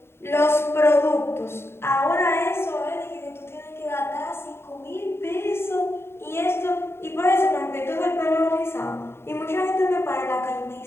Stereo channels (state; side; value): late; right; 0.12 ms